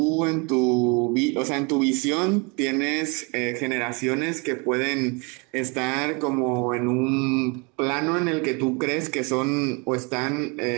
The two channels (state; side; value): quieter; left; 31.0 dB